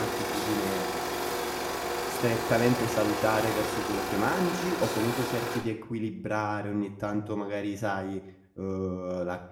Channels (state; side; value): identical; both; correlation 1.00